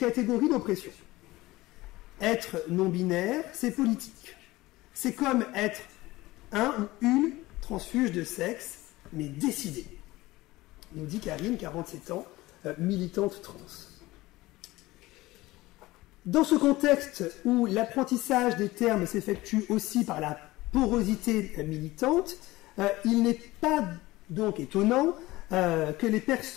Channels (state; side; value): quieter; right; 18.9 dB